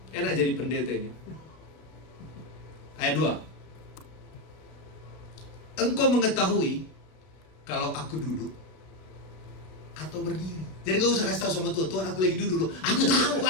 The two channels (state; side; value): late; right; 33 ms